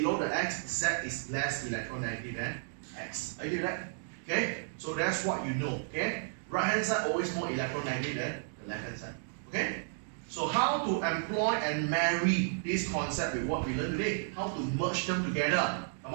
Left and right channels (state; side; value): silent; left; digital silence